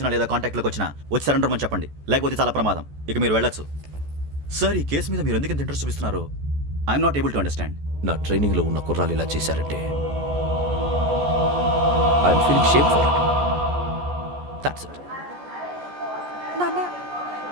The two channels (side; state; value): left; late; 14 ms